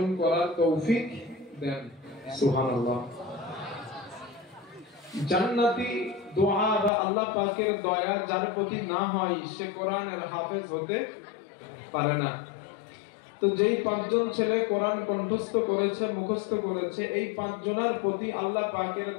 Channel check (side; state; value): right; drops out; at 6.9 s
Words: করার তৌফিক দেন সুবহানাল্লাহ জান্নাতি দোয়া বা আল্লাহ পাকের দয়া যার প্রতি না হয় সে কোরআনের হাফেজ হতে পারে না তো যেই পাঁচজন ছেলে কোরআন কণ্ঠস্থ করেছে মুখস্থ করেছে এই পাঁচজনের প্রতি আল্লাহ পাকের